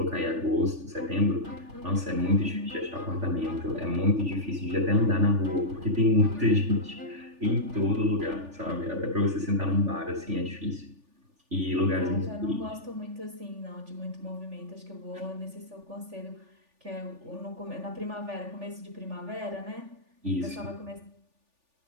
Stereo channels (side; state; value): left; late; 3.4 ms